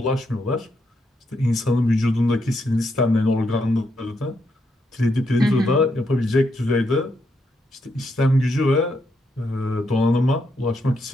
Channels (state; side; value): normal; both; correlation 0.79